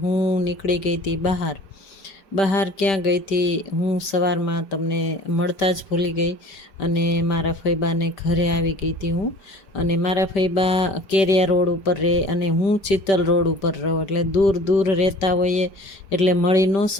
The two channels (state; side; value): late; right; 5.1 ms